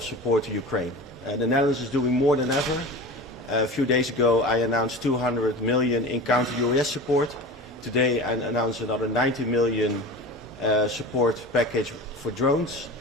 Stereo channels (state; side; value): normal; both; correlation 0.33